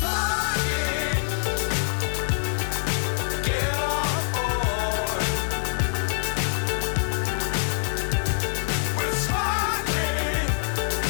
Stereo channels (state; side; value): silent; right; 62 dB below the other